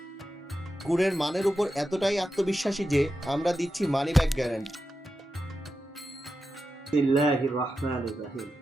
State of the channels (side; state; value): both; normal; correlation 0.90